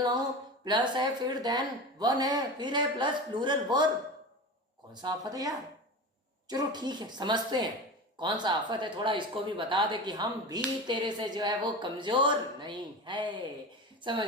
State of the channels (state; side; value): normal; both; correlation 0.28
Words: नाउन, प्लस है, फिर देन वन है, फिर है प्लस प्लूरल वर्ब, कौन सा आफत है यार? चलो ठीक है, समझते हैं कौन सा आफत है, थोड़ा इसको भी बता दे कि हम भी तेरे से जो है वो कमजोर नहीं है। समझ